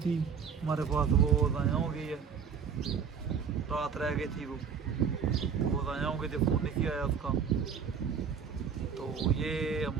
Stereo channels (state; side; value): quieter; left; 6.7 dB